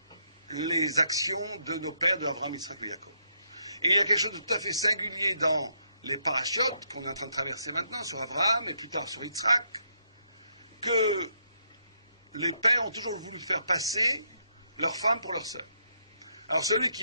les actions de nos pères, de Abraham, Yitzhak et Jacob. Et il y a quelque chose de tout à fait singulier dans les parachiotes qu'on est en train de traverser maintenant, sur Abraham et plus tard sur Yitzhak, que les pères ont toujours voulu faire passer leurs femmes pour leurs sœurs. Alors celui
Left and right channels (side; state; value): both; inverted; correlation -0.76